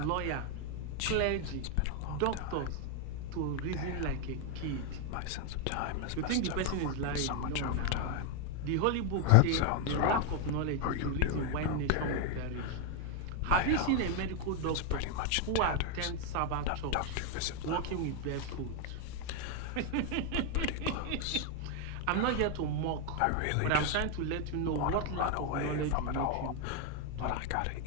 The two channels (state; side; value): different; both; correlation 0.01